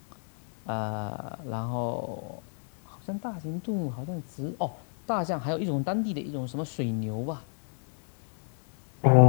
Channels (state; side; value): silent; right; 58 dB below the other